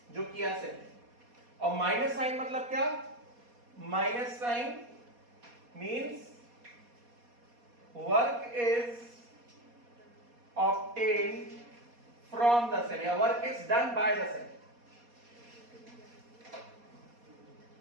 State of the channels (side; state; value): left; late; 4.2 ms